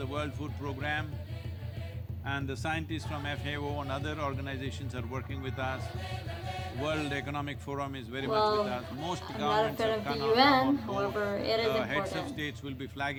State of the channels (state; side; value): identical; both; correlation 1.00